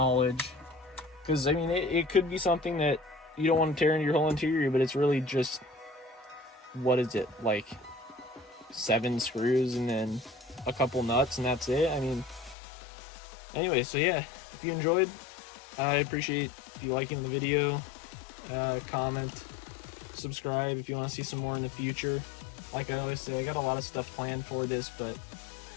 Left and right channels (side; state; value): right; drops out; at 12.6 s